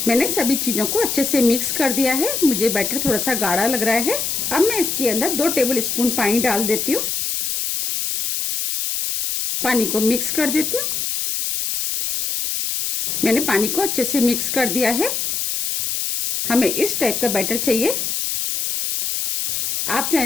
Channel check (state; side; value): noise; left; hiss, 1 dB below the sound